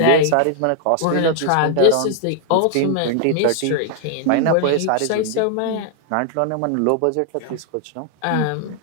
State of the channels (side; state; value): both; different; correlation 0.00